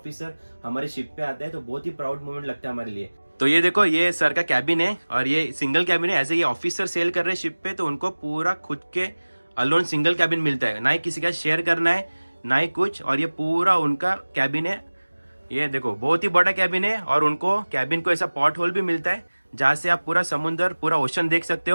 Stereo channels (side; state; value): both; inverted; correlation -1.00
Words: हमारे शिप पे आता है तो बहुत ही प्राउड मोमेंट लगता है हमारे लिए। तो ये देखो, ये सर का कैबिन है और ये सिंगल कैबिन है। ऐसे ये ऑफिसर सेल कर रहे हैं शिप पे, तो उनको पूरा खुद के अलोन सिंगल कैबिन मिलता है, ना ही किसी का शेयर करना है ना ही कुछ। और ये पूरा उनका कैबिन है। ये देखो बहुत ही बड़ा कैबिन है, और उनको कैबिन को ऐसा पॉट होल भी मिलता है जहाँ से आप पूरा समुंदर, पूरा ओशन देख सकते